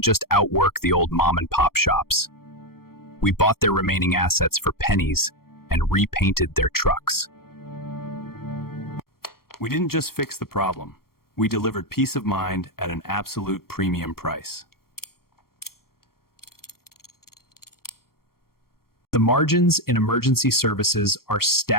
just outwork the old mom-and-pop shops. We bought their remaining assets for pennies and repainted their trucks. We didn't just fix the problem. We delivered peace of mind at an absolute premium price. The margins in emergency services are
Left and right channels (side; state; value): right; late; 0.93 ms